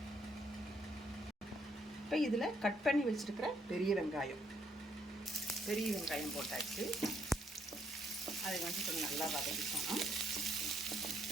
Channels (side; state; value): both; normal; correlation 0.72